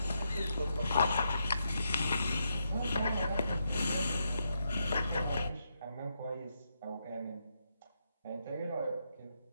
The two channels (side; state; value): both; inverted; correlation -0.81